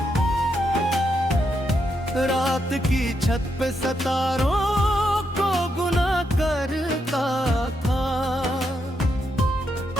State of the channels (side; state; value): both; normal; correlation 0.81